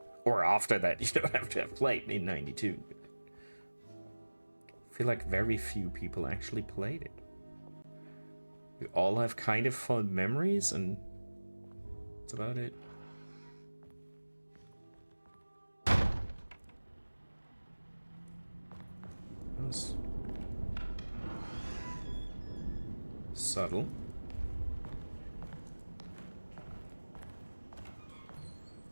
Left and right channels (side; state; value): both; inverted; correlation -1.00